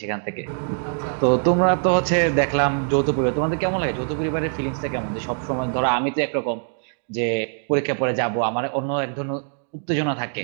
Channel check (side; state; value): left; silent; digital silence